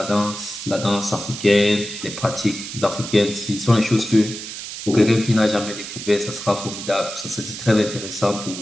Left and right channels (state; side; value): noise; right; hiss, 9 dB below the sound